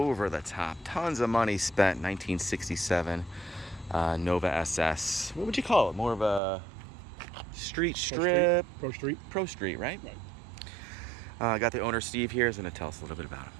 tons of money spent 1967 Nova SS. What would you call it? More of a street strip? Pro Street, right? Right. Got the owner, Steve, here. He's going to tell us a little bit about him.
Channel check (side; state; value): left; drops out; at 6.4 s